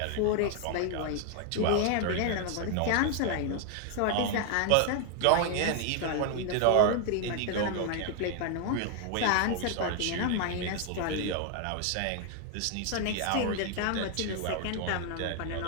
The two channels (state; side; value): different; both; correlation 0.00